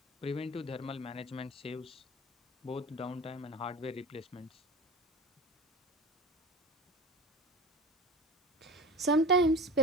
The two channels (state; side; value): normal; both; correlation 0.35